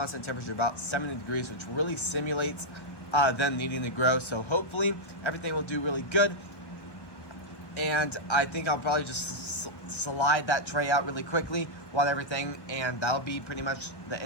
temperature, about 70 degrees, which really simulates them needing to grow. So hopefully everything will do really good. And I think I'll probably just slide that tray out really quickly, water everything, and that'll be pretty much the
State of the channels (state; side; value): late; right; 1.3 ms